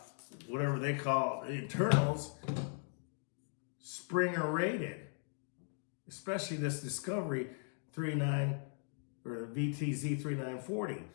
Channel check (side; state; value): right; silent; 52 dB below the other